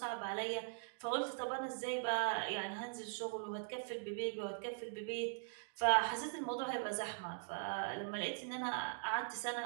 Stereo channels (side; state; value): left; silent; digital silence